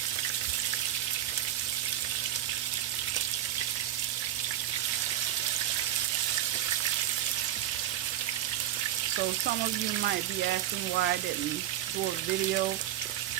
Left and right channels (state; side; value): quieter; left; 12.6 dB